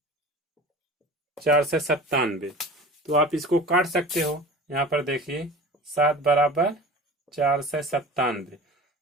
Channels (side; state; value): both; normal; correlation 0.38